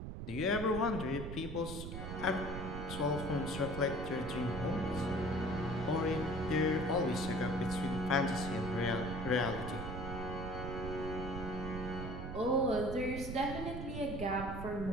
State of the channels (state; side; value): noise; right; rumble, 6 dB below the sound